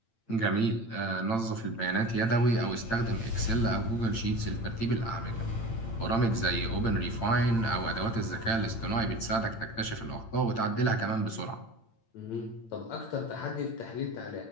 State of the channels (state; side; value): late; right; 8.8 ms